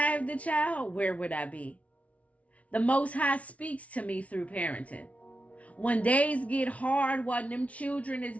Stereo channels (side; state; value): right; late; 0.066 ms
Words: the child, where would I be? The Most High speaks to me through parenting. When days get hard, while them children is